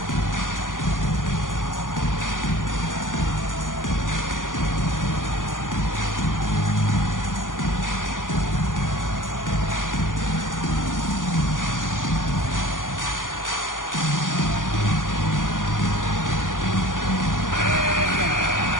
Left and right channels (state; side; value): late; right; 0.88 ms